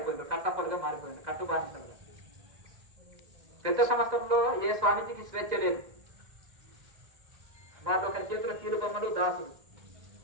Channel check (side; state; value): left; late; 2.0 ms